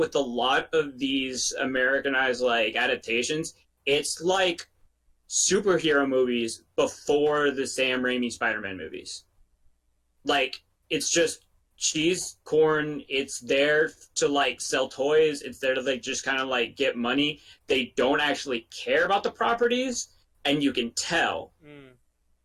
a lot of these Americanized adaptations, it's superhero movies before the Sam Raimi Spider-Man movies. It's just cheese, corn. It's there to sell toys. It's there to just kind of get money. They don't actually care about the properties, and you can tell.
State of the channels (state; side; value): identical; both; correlation 1.00